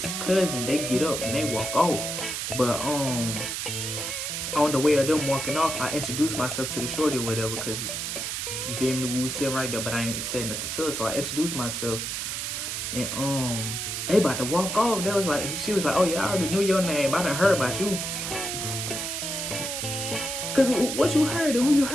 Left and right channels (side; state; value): right; noise; hiss, 3 dB below the sound